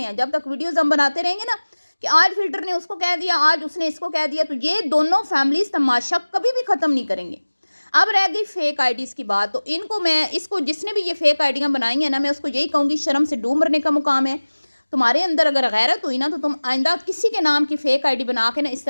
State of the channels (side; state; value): both; inverted; correlation -1.00